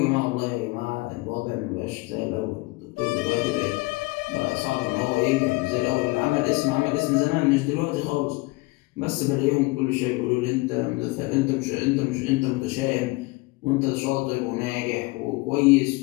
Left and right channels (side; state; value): right; quieter; 23.3 dB